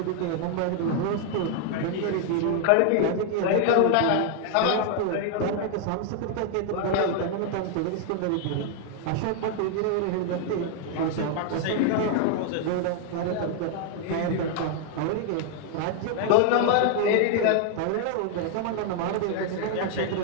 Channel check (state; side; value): different; both; correlation 0.00